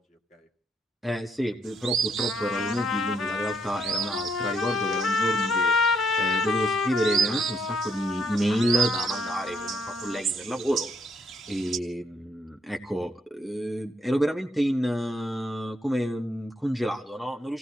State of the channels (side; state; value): both; normal; correlation 0.73